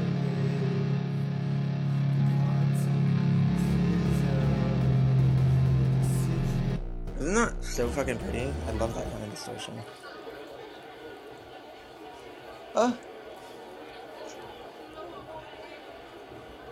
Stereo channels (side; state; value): both; identical; correlation 1.00